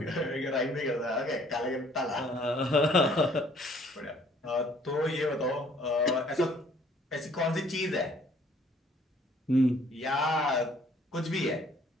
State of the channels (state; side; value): normal; both; correlation 0.59